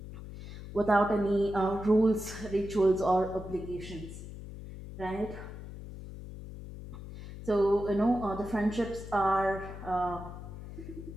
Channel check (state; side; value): noise; left; hum, 12 dB below the sound